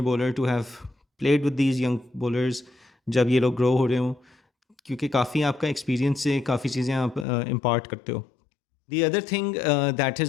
bowler to have played with these young bowlers जब ये लोग ग्रो हो रहे हों, क्योंकि काफ़ी आपका एक्सपीरियंस से काफ़ी चीज़ें आप इम्पार्ट करते हो. The other thing that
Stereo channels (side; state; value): right; drops out; at 7.2 s